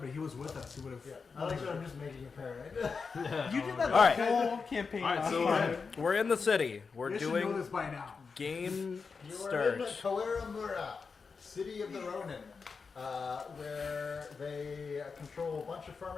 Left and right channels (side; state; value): right; quieter; 5.1 dB